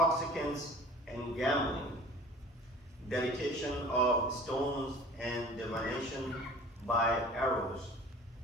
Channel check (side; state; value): both; normal; correlation 0.45